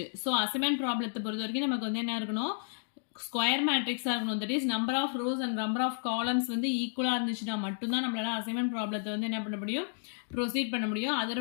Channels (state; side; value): silent; right; digital silence